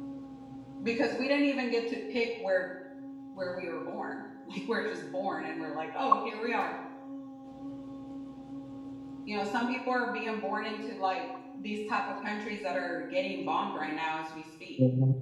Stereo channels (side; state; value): both; identical; correlation 1.00